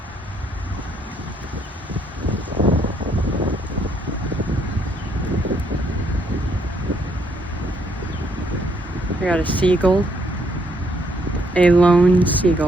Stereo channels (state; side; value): normal; both; correlation 0.71